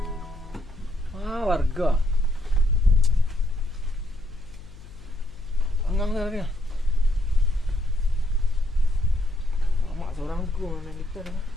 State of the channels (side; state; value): left; noise; hum, 19 dB below the sound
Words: Warga anggang tadi ya. Mak seorang ku main gitar kan.